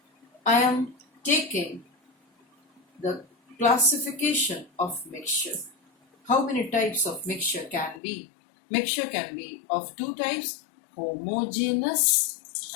I am taking the classification of mixture. How many types of mixture can be? Mixture can be of two types, homogeneous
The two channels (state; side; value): drops out; right; at 8.0 s